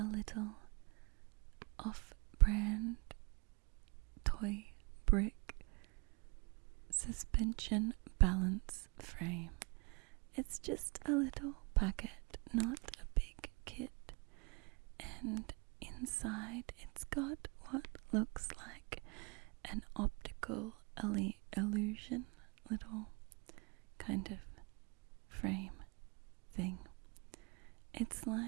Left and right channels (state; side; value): quieter; left; 30.4 dB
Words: little off-brand toy brick suspension balance frame. It's just a little packet, not a big kit, and inside it's got what looks like an optical illusion, little kind of frame thing. It's